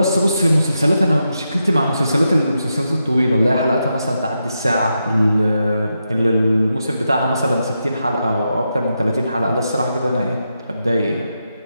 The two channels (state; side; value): inverted; both; correlation -0.86